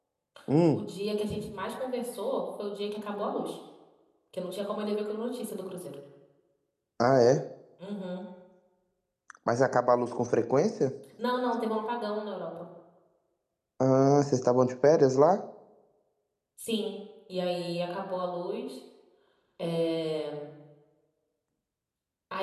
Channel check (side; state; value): both; identical; correlation 1.00